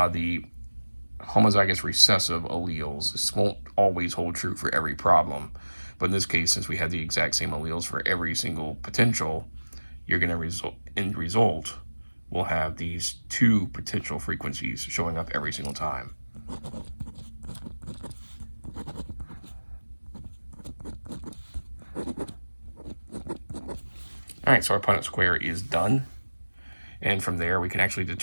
the homozygous recessive alleles. This won't always hold true for every problem, but in this case, since we have the exact same alleles for every single potential, you're going to end result we'll have these two potential frequencies showing up every single time. All right, so our Punnett square is done. And from there, we can actually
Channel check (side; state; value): both; inverted; correlation -1.00